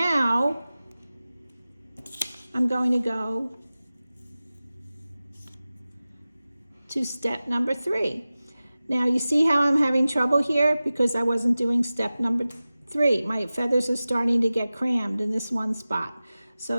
I'm going to go to step number 3. Now you see how I'm having trouble here because I wasn't doing step number 3. My feathers are starting to get crammed in this one spot.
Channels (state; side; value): inverted; both; correlation -0.96